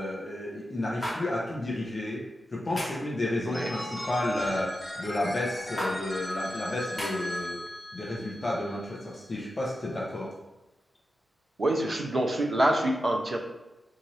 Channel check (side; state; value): both; normal; correlation 0.90